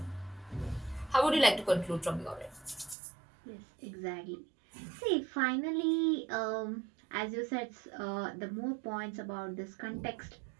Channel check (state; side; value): drops out; left; at 3.0 s